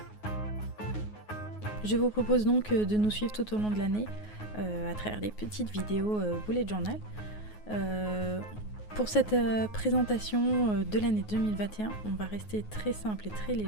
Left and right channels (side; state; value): right; late; 9.4 ms